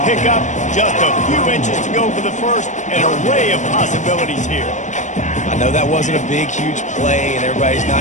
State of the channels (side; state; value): right; late; 0.35 ms